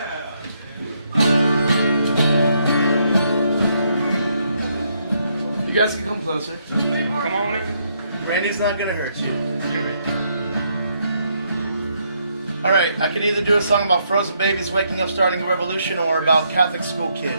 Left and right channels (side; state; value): both; inverted; correlation -0.74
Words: You guys can come closer. Come on in. Randy's not gonna hurt you. Alright, I could either do a song about frozen babies waking up starting a revolution, or about Catholic school